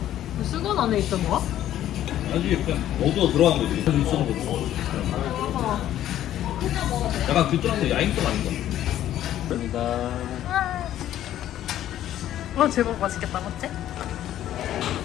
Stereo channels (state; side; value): quieter; right; 12.2 dB